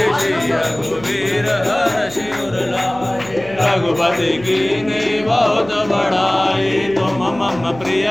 श्री रघुवीर हर्षि उर लाए रघुपति कीन्ही बहुत बड़ाई तुम मम प्रिय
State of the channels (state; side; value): noise; right; hum, 18 dB below the sound